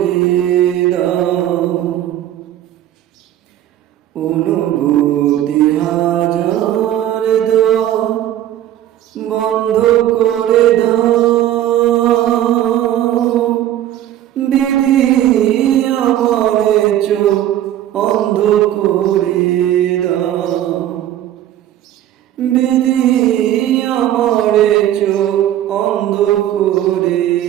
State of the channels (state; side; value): quieter; left; 12.3 dB